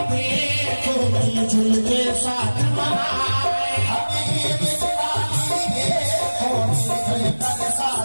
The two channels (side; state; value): both; inverted; correlation -1.00